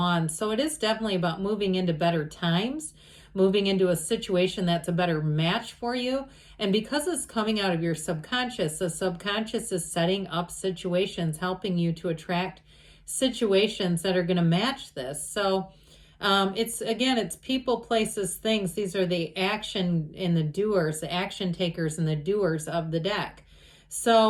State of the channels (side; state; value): both; identical; correlation 1.00